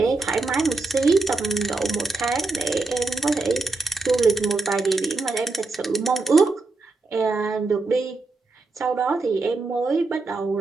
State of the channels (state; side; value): quieter; left; 3.6 dB